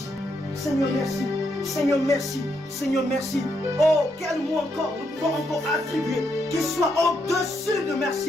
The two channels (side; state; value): both; normal; correlation 0.79